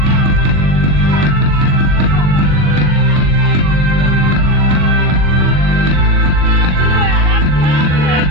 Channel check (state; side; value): late; left; 40 ms